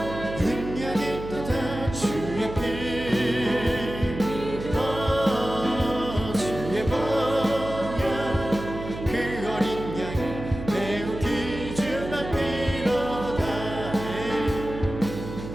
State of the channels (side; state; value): right; noise; hum, 9 dB below the sound